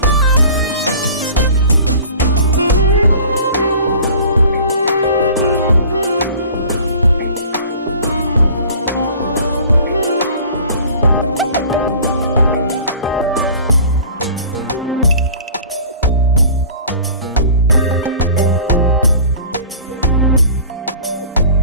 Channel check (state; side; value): inverted; both; correlation -0.45